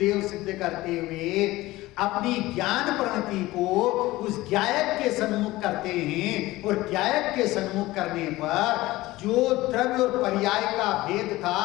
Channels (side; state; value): right; quieter; 18.4 dB